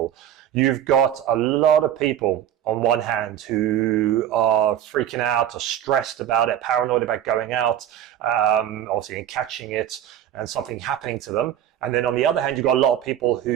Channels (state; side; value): quieter; left; 10.7 dB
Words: You've got a lot of people on one hand who are freaking out or stressed about it, paranoid about going out, obviously and catching it and something happening to them. And then on the other hand, you've got a lot of people